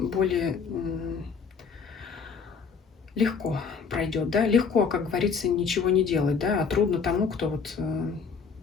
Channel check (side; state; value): right; quieter; 5.7 dB